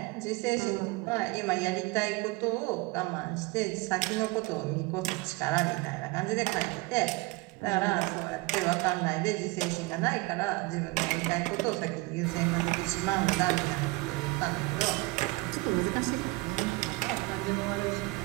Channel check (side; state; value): left; quieter; 23.4 dB